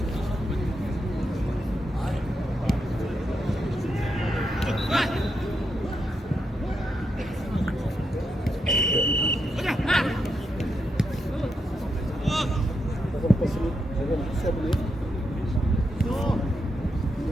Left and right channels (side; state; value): both; normal; correlation 0.83